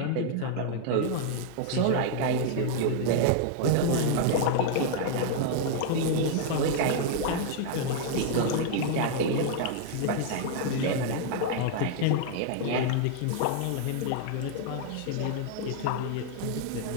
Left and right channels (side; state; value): both; different; correlation 0.00